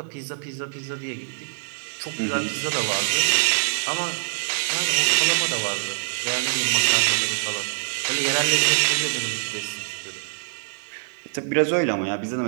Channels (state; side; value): silent; left; 62 dB below the other